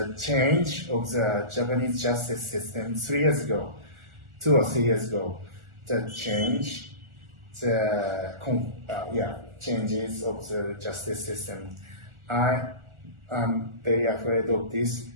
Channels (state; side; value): late; left; 1.4 ms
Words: change of the Japanese justice system 2 or 3 years ago. The change, changes of the justice system. I am very afraid of this,